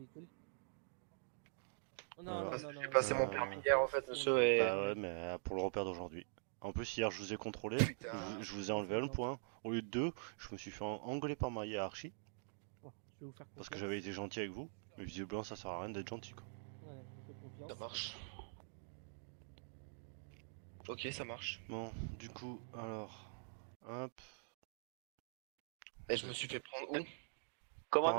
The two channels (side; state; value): left; silent; digital silence